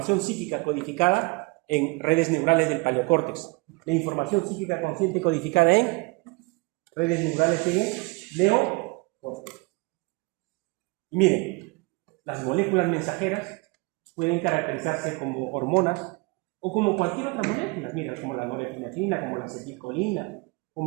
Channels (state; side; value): quieter; left; 27.0 dB